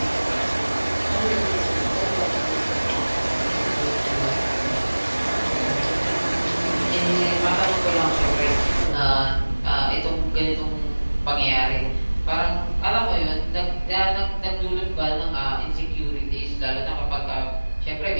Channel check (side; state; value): both; inverted; correlation -1.00